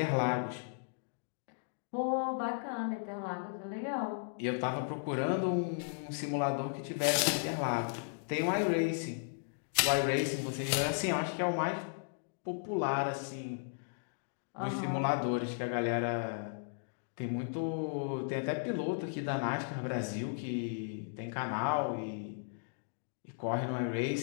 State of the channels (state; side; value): silent; right; digital silence